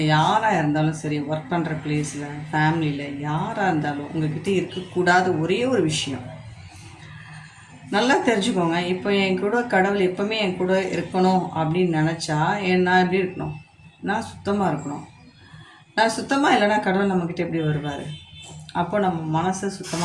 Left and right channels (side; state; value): both; identical; correlation 1.00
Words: யாராக இருந்தாலும் சரி, ஒர்க் பண்ணுற பிளேஸில், ஃபேமிலியில் யாராக இருந்தாலும் உங்கள்கிட்ட இருக்கக்கூடாத ஒரே ஒரு விஷயம் நல்லா தெரிஞ்சுக்கோங்க. இப்போ என் கூட கடவுள் எப்போவுமே என் கூட இருக்கணும் அப்படின்னு நினச்சா நான் எப்படி இருக்கணும்? நான் சுத்தமாக இருக்கணும். நான் சுத்தமாக இல்லைன்னா கடவுள் நம்மக்கிட்ட எப்படி வருவார்? அப்போ நம்ம மனசை